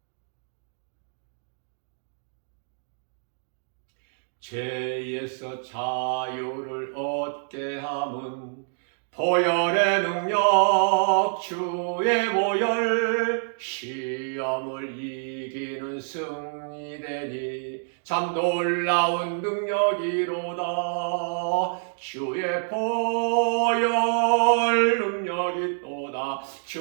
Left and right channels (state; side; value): silent; left; digital silence